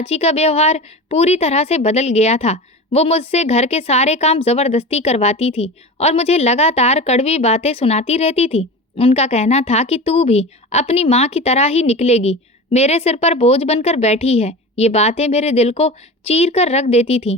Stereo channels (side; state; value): both; normal; correlation 0.30